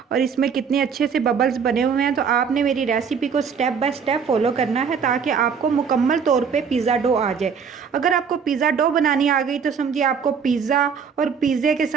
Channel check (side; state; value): left; quieter; 6.5 dB